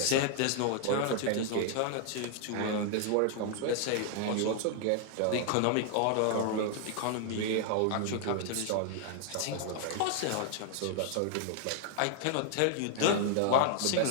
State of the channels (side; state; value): both; different; correlation 0.00